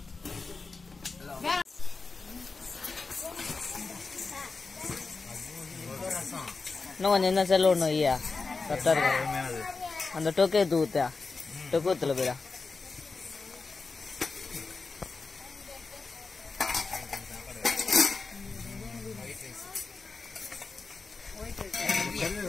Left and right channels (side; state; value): right; quieter; 4.2 dB